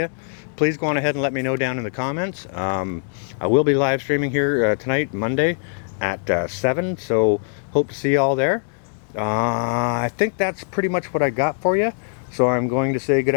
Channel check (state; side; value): silent; right; 64 dB below the other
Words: please go on ahead and let me know down in the comments. I will be live streaming here tonight, Monday, at 7, so hope to see you all there. I think that's pretty much what I got for you. So I'm going to say good